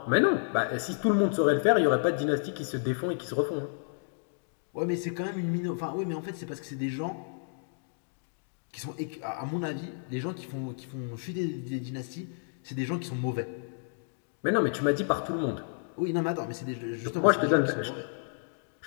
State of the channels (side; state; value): right; silent; digital silence